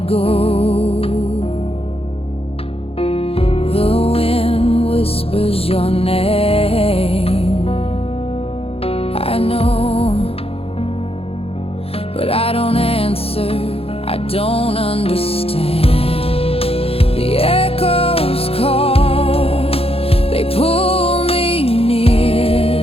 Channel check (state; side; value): late; right; 0.28 ms